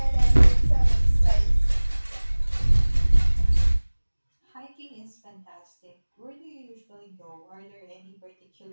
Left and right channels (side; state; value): both; inverted; correlation -1.00